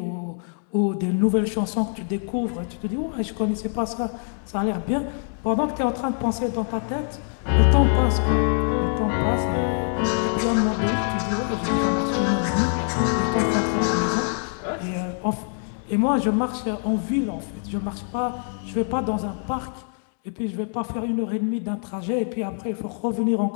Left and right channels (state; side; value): silent; right; 56 dB below the other